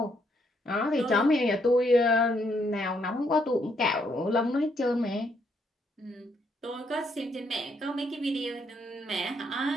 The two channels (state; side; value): normal; both; correlation 0.73